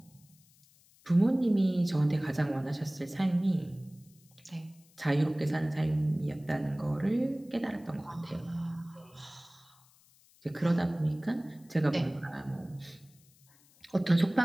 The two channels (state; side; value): noise; left; hiss, 29 dB below the sound